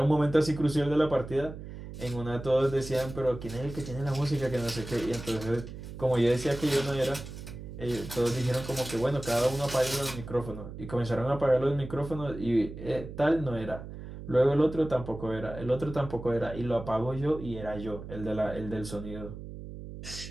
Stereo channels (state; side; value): noise; right; hum, 11 dB below the sound